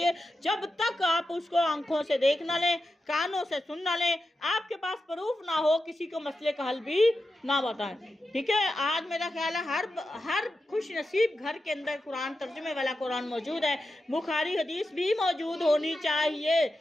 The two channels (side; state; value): both; normal; correlation 0.90